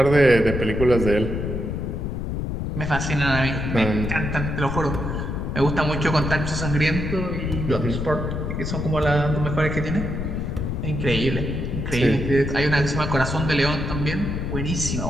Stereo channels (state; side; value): noise; left; rumble, 3 dB below the sound